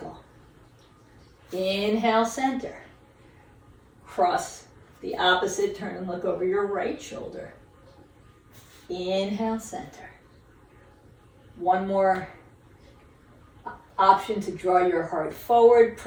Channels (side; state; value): both; identical; correlation 1.00